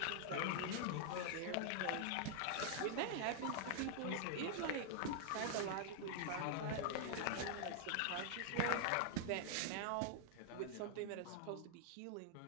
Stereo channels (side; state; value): both; different; correlation -0.01